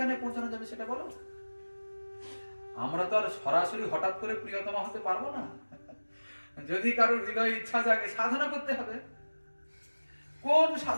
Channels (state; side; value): inverted; both; correlation -1.00